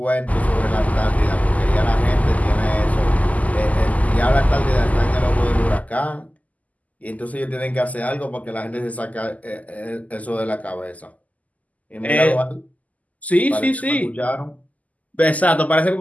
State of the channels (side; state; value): right; late; 0.075 ms